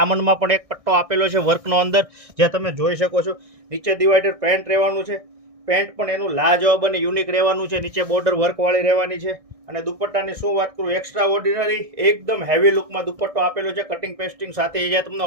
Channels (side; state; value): left; late; 1.6 ms